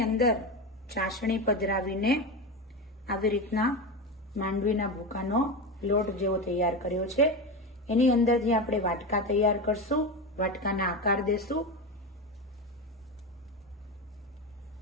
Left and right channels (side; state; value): both; normal; correlation 0.20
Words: અંદર ચાસણી પધરાવીને આવી રીતના માંડવીના ભૂકાનો લોટ જેવો તૈયાર કર્યો છે. એની અંદરથી આપણે વાટકા તૈયાર કરશું, વાટકાના આકાર દેશું.